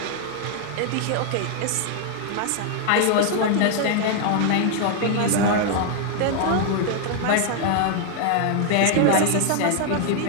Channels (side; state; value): both; different; correlation 0.00